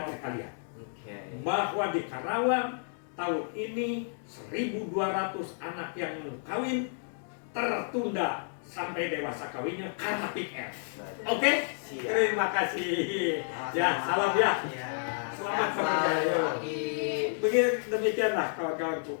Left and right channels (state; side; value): silent; right; digital silence